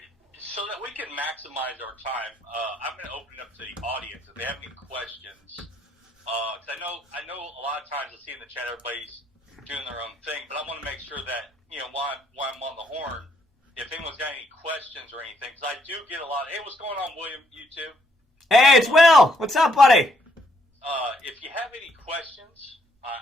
So that we can maximize our time, I'm going to open it up to the audience. If they have any questions, because I know a lot of times I see in the chat everybody's doing their own thing, but I want to make sure that, you know, while I'm on the horn, if anyone's got any questions or anything, because I do get a lot of, hey, what's going on, William, YouTube? Hey, it's Will. What's up, buddy? If you have any questions,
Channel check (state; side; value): normal; both; correlation 0.72